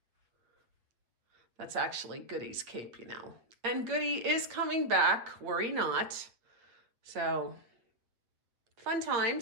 That's actually Goody's cape, you know. And Goody is coming back, worry not. So, fun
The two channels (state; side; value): late; left; 8.4 ms